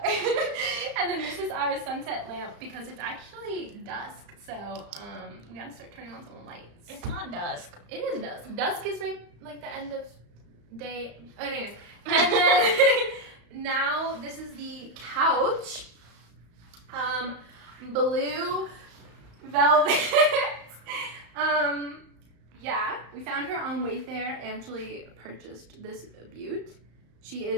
And then this is our sunset lamp, because it's actually dusk. So we gotta start turning on some lights. It's not dusk. It is dusk. Dusk is right like the end of day. Anyways. And then now this is the couch. Blue velvet. Yeah, we found her on Wayfair. Angela purchased this beaut. She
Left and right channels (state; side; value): late; left; 35 ms